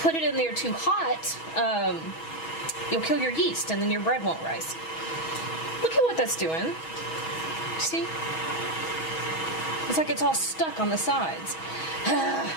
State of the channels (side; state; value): right; late; 6.2 ms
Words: it in there too hot, you'll kill your yeast and then your bread won't rise. Look at what that's doing. See? It's like it's all stuck on the sides.